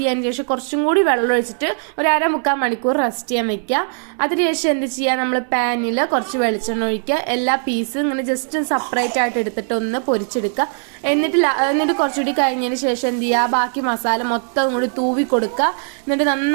ശേഷം കുറച്ചും കൂടി വെള്ളം ഒഴിച്ചിട്ട് ഒരു 1/2-3 മണിക്കൂർ റെസ്റ്റ് ചെയ്യാൻ വെക്കുക. അതിനുശേഷം എന്ത് ചെയ്യുക, നമ്മൾ പാനിൽ കുറച്ച് വെളിച്ചെണ്ണ ഒഴിക്കുക. എല്ലാ പീസും ഇങ്ങനെ ജസ്റ്റ് സെപ്പറേറ്റ് ആയിട്ട് എടുത്തിട്ട് ഒന്ന് പൊരിച്ചെടുക്കുക. എന്നിട്ട് കുറച്ചുകൂടി കഴിഞ്ഞതിന് ശേഷം എന്ത് ചെയ്യുക, ബാക്കി മസാല മൊത്തം കൂടി തൂവി കൊടുക്കുക. എന്നിട്ട്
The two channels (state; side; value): silent; left; 59 dB below the other